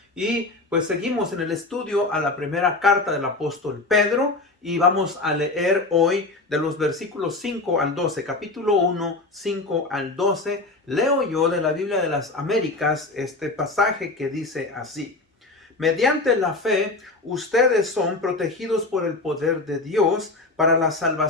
Y pues seguimos en el estudio a la primera carta del apóstol Pedro y vamos a leer hoy de los versículos 5 al 12, capítulo 1, 5 al 12. Leo yo de la Biblia de las Américas este pasaje que dice así: mediante la fe, ustedes son protegidos por el poder de Dios para la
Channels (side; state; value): right; quieter; 3.2 dB